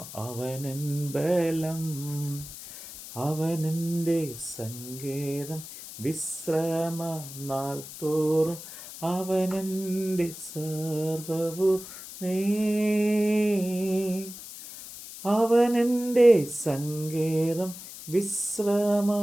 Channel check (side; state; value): left; noise; hiss, 13 dB below the sound